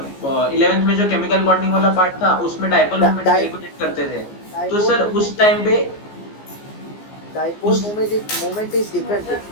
11th में जो केमिकल बॉन्डिंग वाला पार्ट था उसमें डाइपोल मोमेंट कैलकुलेट करते थे, तो सर उस टाइम पे डाइपोल मोमेंट इज डिफरेंट,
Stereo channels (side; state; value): right; late; 15 ms